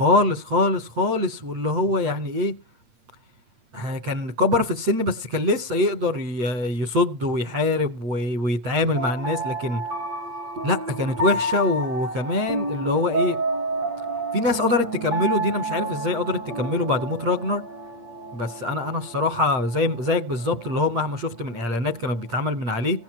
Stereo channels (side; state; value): left; late; 8.6 ms